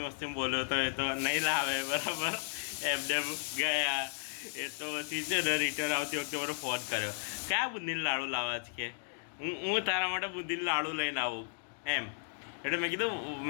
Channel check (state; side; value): silent; right; digital silence